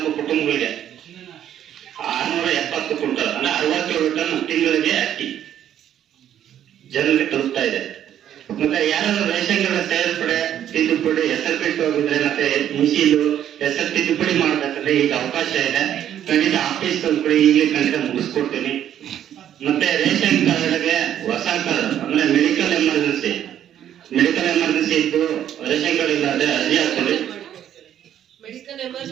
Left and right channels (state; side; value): quieter; left; 10.6 dB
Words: ಕುಟುಂಬಗಳಿಗೆ 670 ಕ್ವಿಂಟಲ್ ಅಂದ್ರೆ 67 ಟನ್ ತಿಂಗಳಿಗೆ ಅಕ್ಕಿ ಜನರಿಗೆ ತಲುಪ್ತಾ ಇದೆ. ಮತ್ತೆ ಯಾರಾದ್ರೂ ರೇಷನ್ ಕಾರ್ಡ್ ಸೇರ್ಪಡೆ ತಿದ್ದುಪಡಿ ಹೆಸರು ಬಿಟ್ಟು ಹೋಗಿದ್ರೆ ಮತ್ತೆ ಮಿಷಿಲು ಹೆಸರು ತಿದ್ದುಪಡಿ ಮಾಡ್ಬೇಕಂದ್ರೆ ಈಗ ಅವಕಾಶ ಇದೆ. ಖಂಡಿತ ಆಫೀಸ್ ತಂದ್ಕೊಡಿ, ಈಗಲೇ ಖಂಡಿತ ಮುಗಿಸ್ಕೊಡ್ತೀನಿ. ಮತ್ತೆ ರೇಷನ್ ಕಾರ್ಡ್ಗೆ ಹೊಸ ಕಾರ್ಡ್ ಅಂದ್ರೆ ಮೆಡಿಕಲ್ ಎಮರ್ಜೆನ್ಸಿ ಇದ್ದು ರೇಷನ್ ಕಾರ್ಡ್ ಇಲ್ಲ ಅಂದ್ರೆ ಅರ್ಜಿ ಹಾಕೊಳ್ಳಿ. ಮೆಡಿಕಲ್